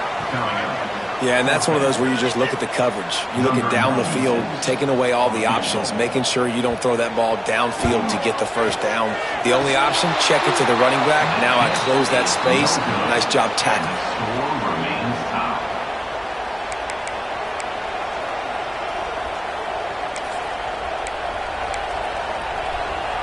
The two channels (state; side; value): identical; both; correlation 1.00